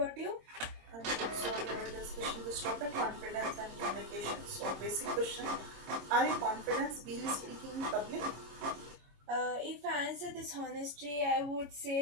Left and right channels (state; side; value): late; left; 26 ms